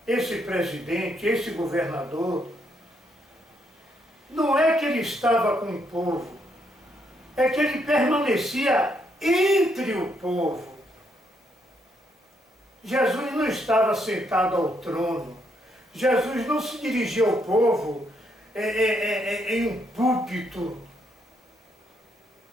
esse presidente, esse governador, não é que ele estava com o povo, é que ele permanecia entre o povo. Jesus não estava sentado ao trono, Jesus não se dirigia ao povo em um púlpito,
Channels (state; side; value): normal; both; correlation 0.75